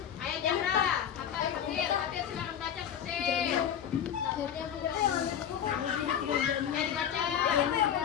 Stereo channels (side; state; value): right; quieter; 9.2 dB